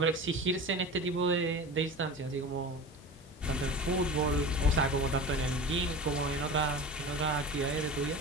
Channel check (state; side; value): normal; both; correlation 0.33